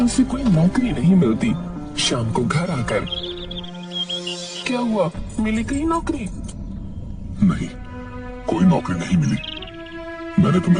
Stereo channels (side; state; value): both; identical; correlation 1.00